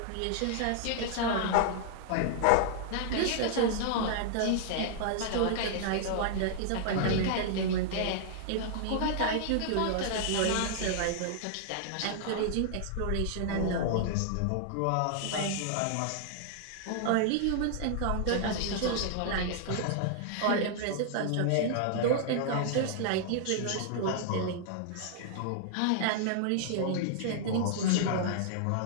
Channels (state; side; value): different; both; correlation -0.01